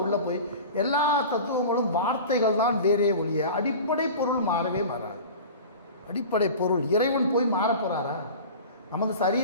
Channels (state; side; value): inverted; both; correlation -0.35